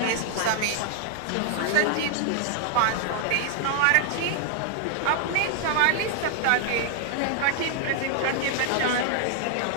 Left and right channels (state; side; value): different; both; correlation 0.00